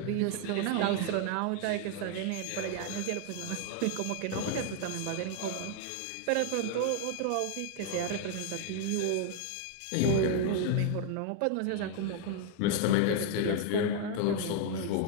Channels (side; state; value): both; different; correlation 0.00